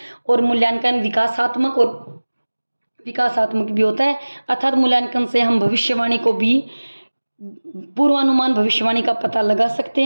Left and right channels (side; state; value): both; inverted; correlation -1.00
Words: और मूल्यांकन विकासात्मक भी होता है, अर्थात मूल्यांकन से हम भविष्यवाणी को भी, पूर्वानुमान भविष्यवाणी का पता लगा सकते